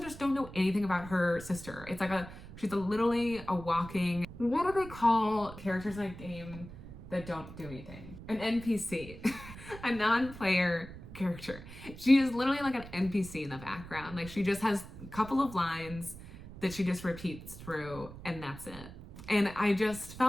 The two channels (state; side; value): noise; right; rumble, 14 dB below the sound